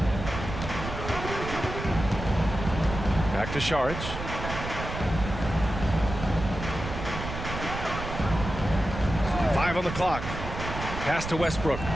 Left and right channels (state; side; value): noise; right; rumble, 7 dB below the sound